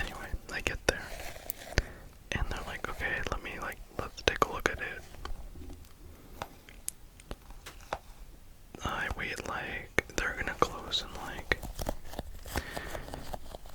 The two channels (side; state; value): both; identical; correlation 1.00